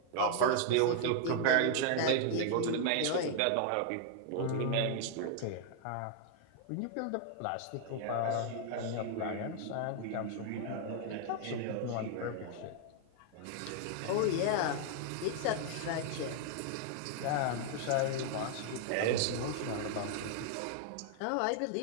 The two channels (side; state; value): both; different; correlation 0.00